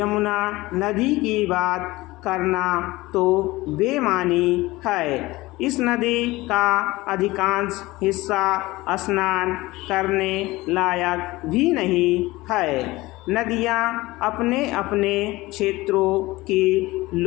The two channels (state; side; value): quieter; right; 19.9 dB